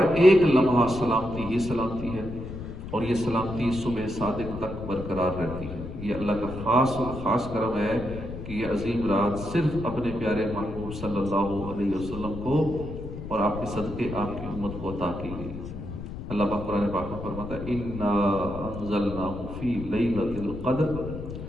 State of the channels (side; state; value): left; noise; rumble, 9 dB below the sound